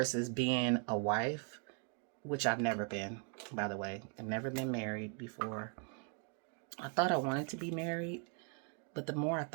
being a wife, which I've never been, by the way. I've never been married before. I thought I wanted to be married, but the more I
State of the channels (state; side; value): quieter; left; 32.7 dB